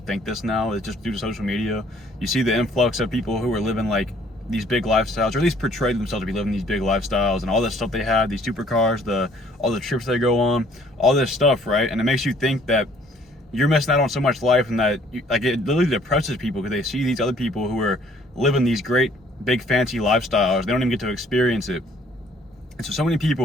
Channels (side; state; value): both; normal; correlation 0.60